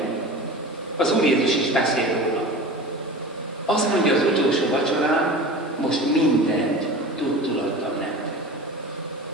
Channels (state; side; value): normal; both; correlation 0.35